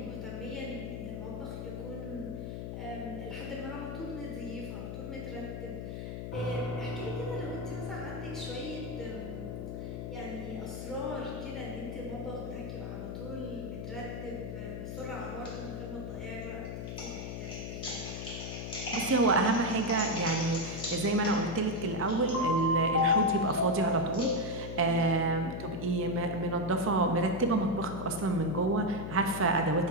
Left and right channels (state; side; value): noise; left; hum, 5 dB below the sound